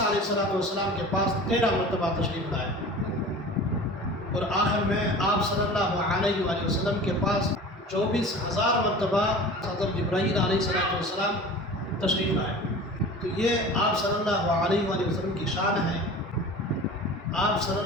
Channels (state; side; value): normal; both; correlation 0.38